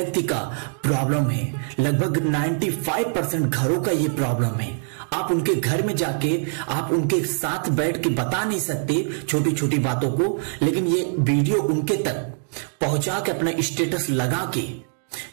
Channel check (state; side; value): silent; left; digital silence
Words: का प्रॉब्लम है। लगभग 95% घरों का ये प्रॉब्लम है। आप उनके घर में जाके आप उनके साथ बैठ के बता नहीं सकते छोटी छोटी बातों को, लेकिन ये वीडियो उनके तक पहुंचा के अपना स्टेटस लगा